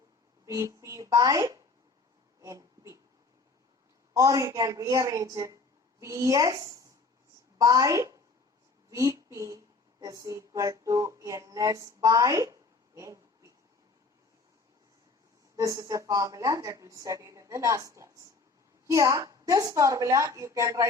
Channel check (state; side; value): quieter; right; 3.8 dB